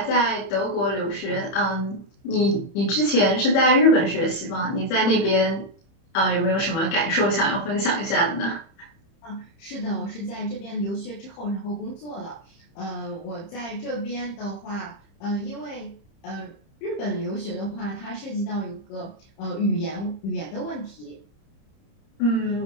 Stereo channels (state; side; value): late; right; 31 ms